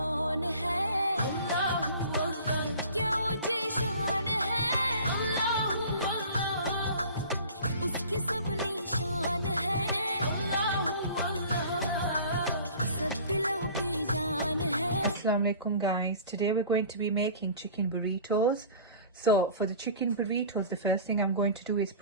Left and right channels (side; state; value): both; inverted; correlation -0.43